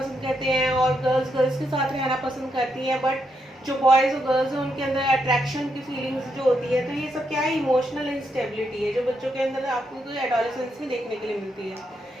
करते हैं और गर्ल्स गर्ल्स के साथ रहना पसंद करती हैं। बट जो बॉयज़ और गर्ल्स हैं उनके अंदर अट्रैक्शन की फीलिंग्स जो होती है, तो ये सब क्या है, इमोशनल इंस्टेबिलिटी है जो बच्चों के अंदर आपको एडोलेसेंस में देखने के लिए मिलती है।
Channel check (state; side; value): normal; both; correlation 0.80